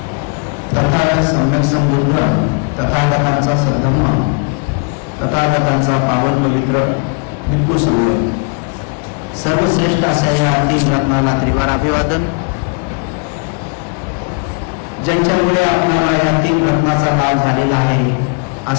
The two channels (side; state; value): right; quieter; 37.2 dB